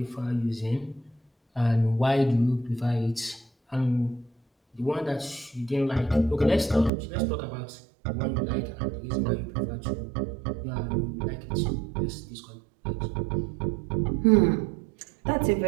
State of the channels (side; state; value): left; drops out; at 6.9 s